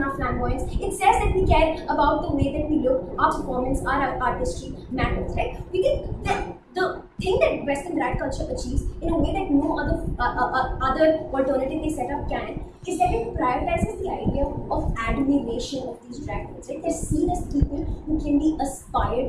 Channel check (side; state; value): both; identical; correlation 1.00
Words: our flamboyance, it says that we care about the way that we look, our performance, our artistry matters, right? We think that the thing that Western drag culture achieves in a way that no other alternative they set up can is that it prioritizes the idea of admiration of these drag queens. Right? They're seen as people who can be